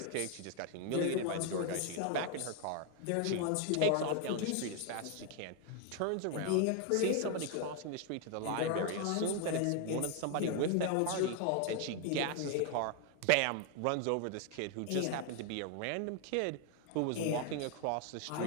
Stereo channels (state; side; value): different; both; correlation 0.00